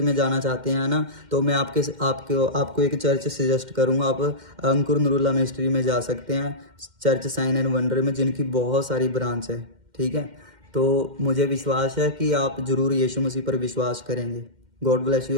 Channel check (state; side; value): late; left; 2.1 ms